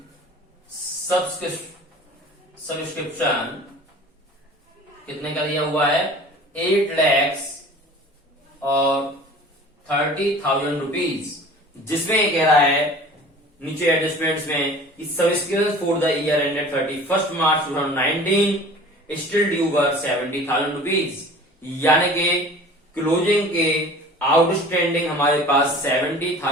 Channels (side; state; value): both; normal; correlation 0.43